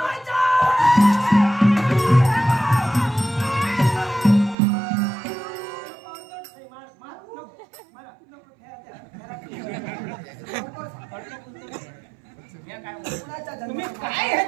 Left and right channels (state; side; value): drops out; left; at 4.5 s